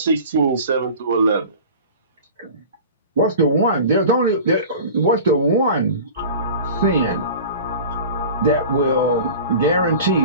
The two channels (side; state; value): both; inverted; correlation -0.38